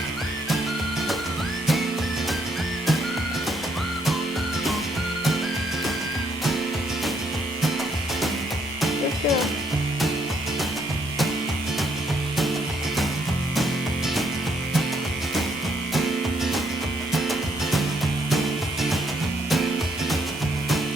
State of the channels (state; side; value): normal; both; correlation 0.71